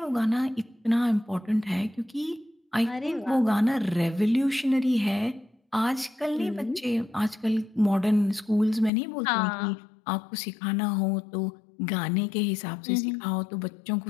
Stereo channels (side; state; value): right; drops out; at 8.9 s